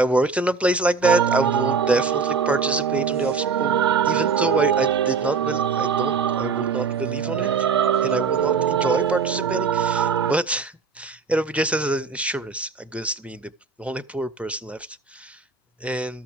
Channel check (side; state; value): left; quieter; 5.0 dB